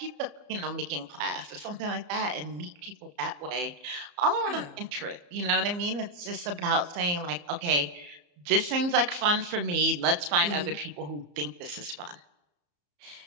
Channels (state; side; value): late; left; 34 ms